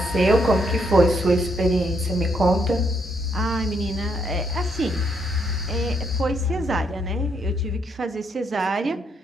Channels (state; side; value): normal; both; correlation 0.74